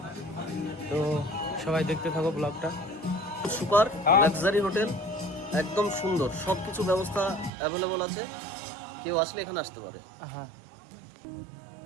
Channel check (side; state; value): left; drops out; at 7.5 s